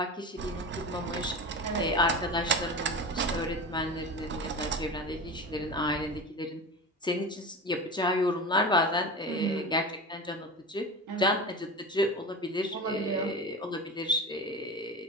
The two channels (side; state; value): both; normal; correlation 0.29